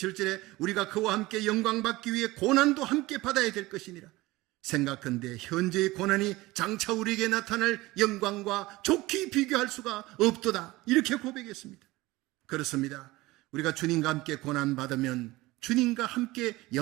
우리가 그와 함께 영광 받기 위해 고난도 함께 받아야 될 것이니라. 생각한데 현재의 고난이 장차 우리에게 나타날 영광과 좋게 비교할 수가 없도다, 이렇게 고백했습니다. 그렇습니다. 우리가 주님과 함께 고난받으면 주님과 함께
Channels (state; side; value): quieter; left; 19.8 dB